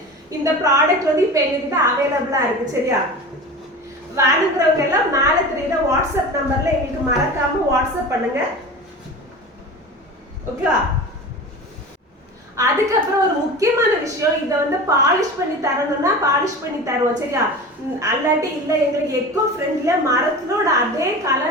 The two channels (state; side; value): normal; both; correlation 0.32